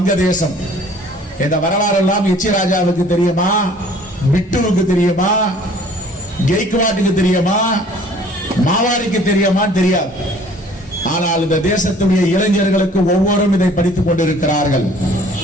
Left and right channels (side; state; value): both; normal; correlation 0.53